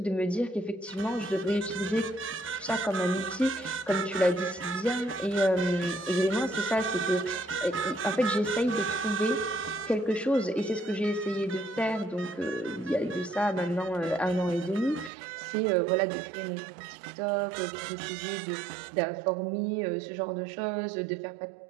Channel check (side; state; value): left; drops out; at 15.1 s